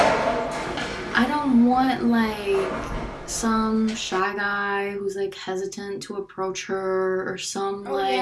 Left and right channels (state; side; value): identical; both; correlation 1.00